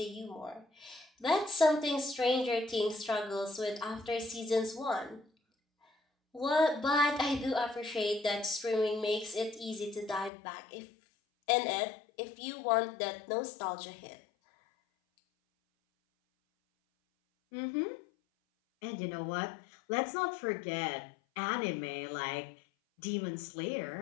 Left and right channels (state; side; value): drops out; right; at 10.3 s